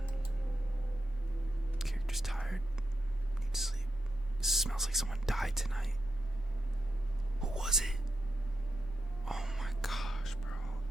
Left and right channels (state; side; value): normal; both; correlation 0.86